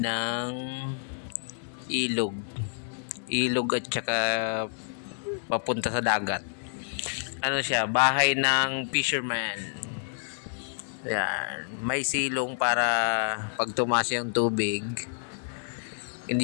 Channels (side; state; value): right; silent; 59 dB below the other